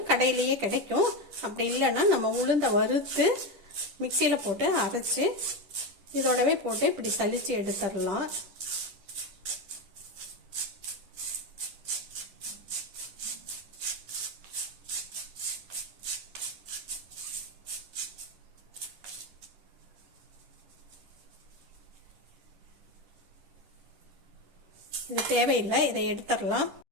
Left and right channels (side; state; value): left; late; 10 ms